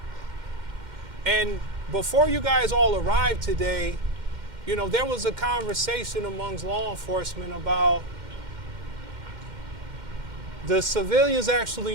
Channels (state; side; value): late; left; 2.1 ms